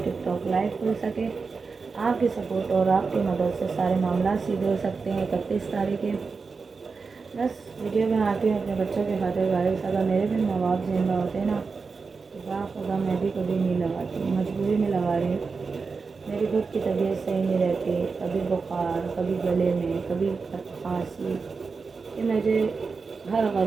टिकटॉक लाइव खुल सके। आपकी सपोर्ट और आपकी मदद से सारे मामला सीधे हो सकते हैं। 31 तारीख है। बस वीडियो में आती हूँ अपने बच्चों के खातिर। गाइस अगर मेरे भी माँ बाप जिंदा होते हैं ना तो खुदा मैं भी कभी नहीं लगाती, मजबूरी में लगा रही हूँ। मेरी खुद की तबीयत सही नहीं रहती, कभी बुखार, कभी गले में, कभी खांसी। कि मुझे हर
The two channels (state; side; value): quieter; left; 4.7 dB